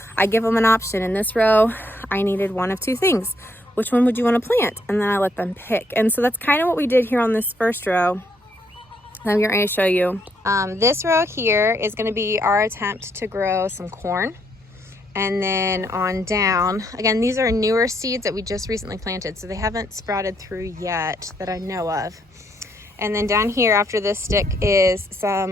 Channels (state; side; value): normal; both; correlation 0.73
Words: I give them an option. In this row, I needed one of two things. Which one would you want to plant? And then I let them pick. And so that's kind of what we did here on this first row. I'm going to show you. This row here is going to be our attempt to grow some corn. And then on down, again, these are newer seeds that we just recently planted, so they haven't sprouted through yet that I know of. And then down here after this stick is